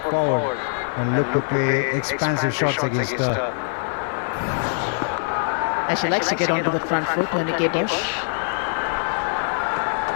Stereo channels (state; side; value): silent; right; digital silence